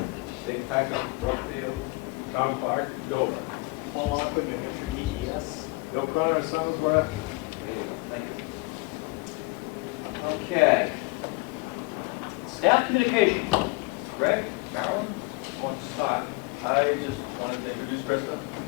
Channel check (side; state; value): right; quieter; 26.1 dB